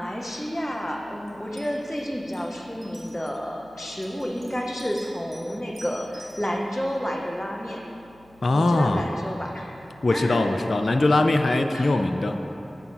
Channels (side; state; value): left; noise; hum, 29 dB below the sound